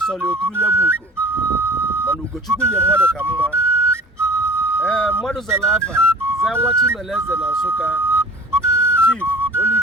sọrọ oturu nye bụ ugo mana Ugochukwu nye mmadụ ka mma mmadụ zara afa zaa nwa Chimeleze na Nsụka Chief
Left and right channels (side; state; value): both; normal; correlation 0.44